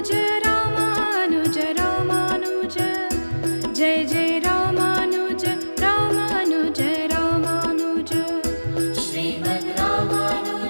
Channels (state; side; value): inverted; both; correlation -1.00